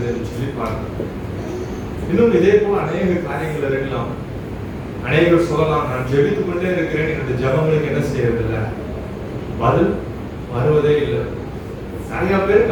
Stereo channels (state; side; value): identical; both; correlation 1.00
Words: என்று சொல்லி பார்க்கிறோம். இன்னும் இதே போல அநேக காரியங்கள் இருக்கலாம். அநேகர் சொல்லலாம், நான் ஜெபித்துக் கொண்டே இருக்கிறேன், என்னுடைய ஜெபங்களுக்கு என்ன செய்யறதில்லை, பதில் வருவதே இல்லை. நிறைய